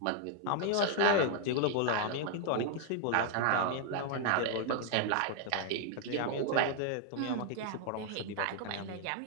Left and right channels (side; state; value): both; different; correlation 0.00